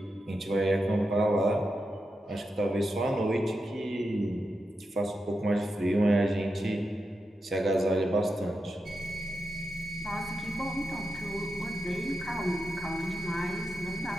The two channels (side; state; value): both; normal; correlation 0.88